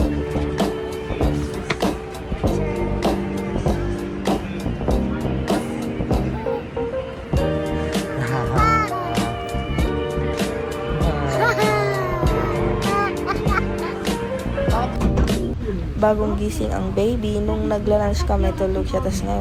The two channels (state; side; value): identical; both; correlation 1.00